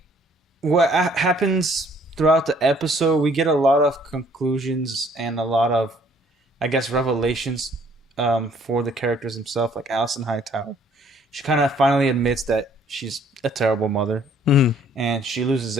what happens throughout the episode, we get a lot of conclusions and a lot of, I guess, revelations for the characters themselves. Like Alison Hightower, she kind of finally admits that she's a terrible mother, and she loses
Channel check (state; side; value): normal; both; correlation 0.60